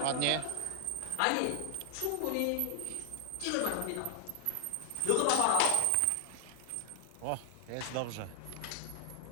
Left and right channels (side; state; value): both; different; correlation 0.00